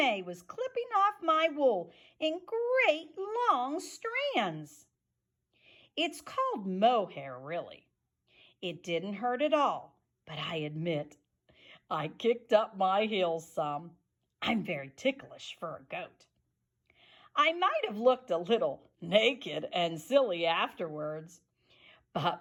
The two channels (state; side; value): identical; both; correlation 1.00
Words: was clipping off my wool in great long strands. It's called mohair, really. It didn't hurt at all, but I admit I kicked up my heels some. I'm very ticklish for a goat. I might have looked a little naked and silly afterwards,